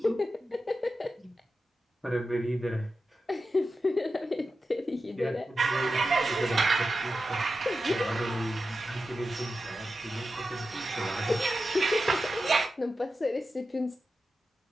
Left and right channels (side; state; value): both; normal; correlation 0.91